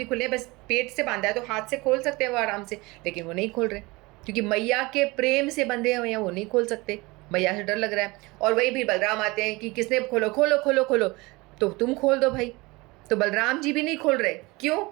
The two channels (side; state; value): left; quieter; 23.5 dB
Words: खुले हैं, बस पेट से बांधा है तो हाथ से खोल सकते हैं वो आराम से, लेकिन वो नहीं खोल रहे क्योंकि मैया के प्रेम से बंधे हुए हैं, वो नहीं खोल सकते, मैया से डर लग रहा है। और वही भी बलराम आते हैं कि किसने खोलो, तो तुम खोल दो भाई, तो बलराम जी भी नहीं खोल रहे, क्यों?